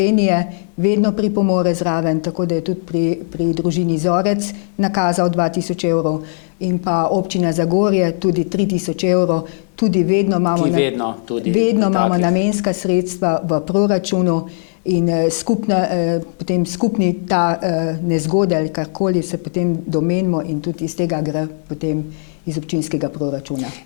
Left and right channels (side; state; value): right; silent; digital silence